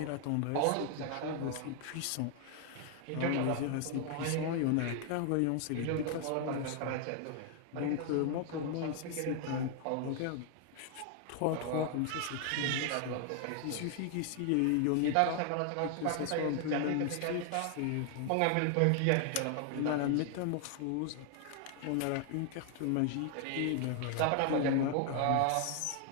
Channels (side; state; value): both; different; correlation 0.00